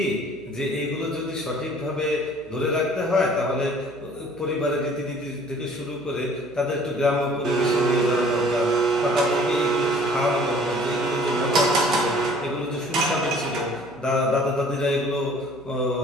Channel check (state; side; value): noise; right; hum, 25 dB below the sound